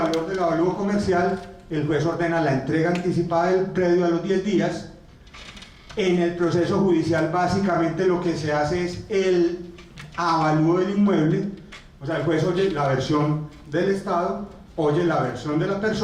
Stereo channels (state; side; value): identical; both; correlation 1.00